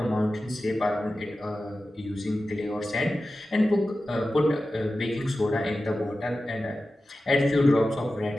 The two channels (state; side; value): normal; both; correlation 0.94